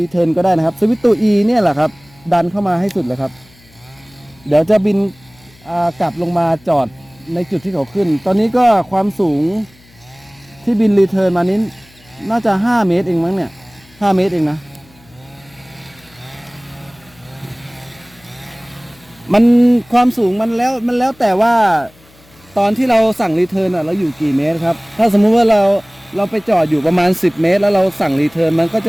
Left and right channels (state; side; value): noise; left; hum, 28 dB below the sound